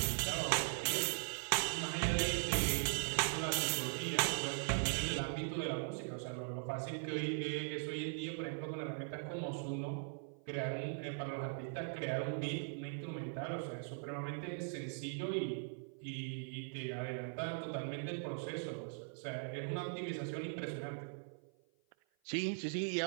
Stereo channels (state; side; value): silent; left; 51 dB below the other